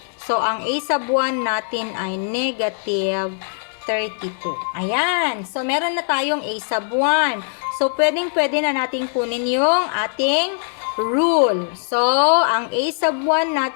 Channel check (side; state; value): right; silent; digital silence